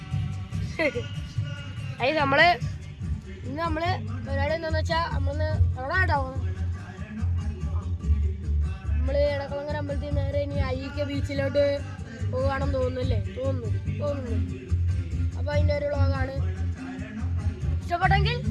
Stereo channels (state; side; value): identical; both; correlation 1.00